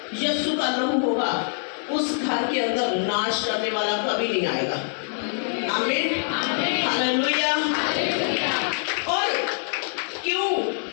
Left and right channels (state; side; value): silent; right; 57 dB below the other